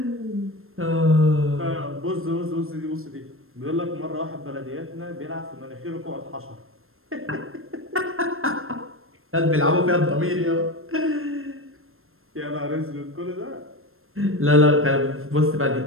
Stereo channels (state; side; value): late; left; 0.61 ms